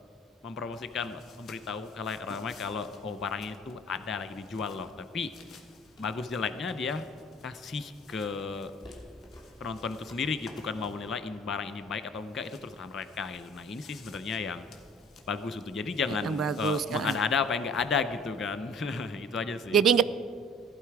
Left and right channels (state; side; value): normal; both; correlation 0.50